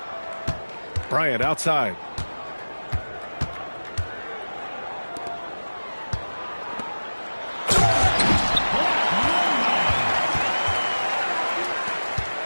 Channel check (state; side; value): inverted; both; correlation -1.00